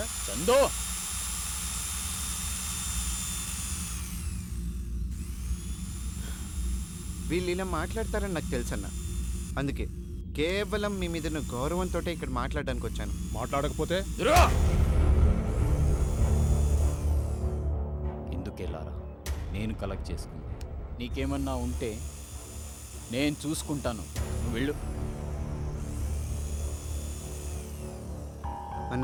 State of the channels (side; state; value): both; identical; correlation 1.00